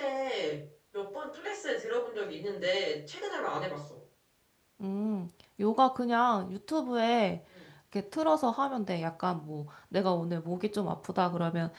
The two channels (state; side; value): identical; both; correlation 1.00